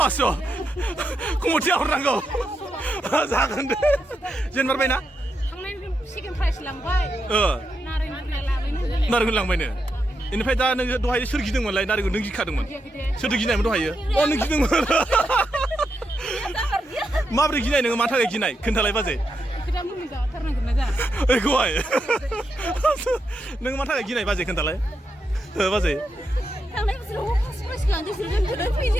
कमिटिया हरनांगौ जागोन दे जेनबारबायना सेकेन्ड प्राइज लांबाय नारेंखल लांबायनो इनिफ्राय दा नोङो दहाय सोर गिदोंमोनलाय नारेंखल नों गिखादोंमोन सोरदो गिनायमोन दहायो नों गिदोंमोन माब्रै गिनाय नोङो मानि थाखाय गिनाय खोन्थालाय बाजै ओइखौहाय नों मानि थाखाय गिनाय बाजै खोन्थालाय बाजै थांनाय बोसोराव फार्स्ट प्राइज लांदों जों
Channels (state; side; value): normal; both; correlation 0.84